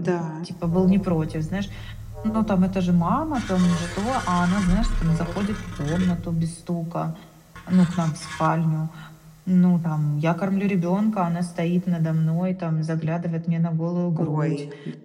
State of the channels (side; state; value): both; identical; correlation 1.00